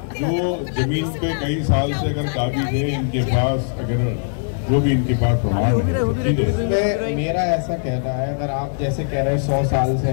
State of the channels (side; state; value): right; silent; digital silence